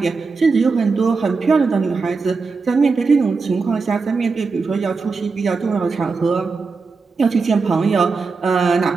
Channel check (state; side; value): quieter; left; 4.5 dB